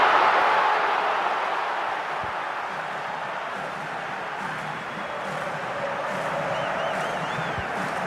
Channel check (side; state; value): both; identical; correlation 1.00